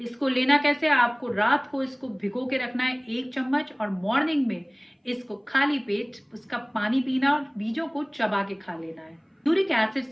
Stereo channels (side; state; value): both; identical; correlation 1.00